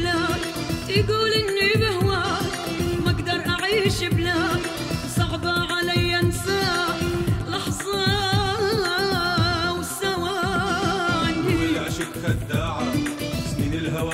يقول اني بهواك ما اقدر اعيش بلاك، صعبة علي انساك لحظة وثواني. العشق خداعة، سنين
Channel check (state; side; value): identical; both; correlation 1.00